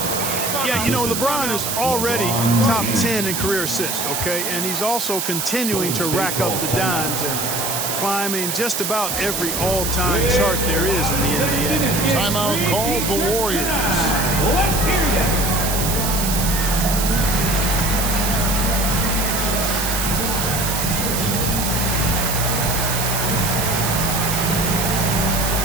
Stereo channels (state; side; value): noise; right; hiss, 2 dB below the sound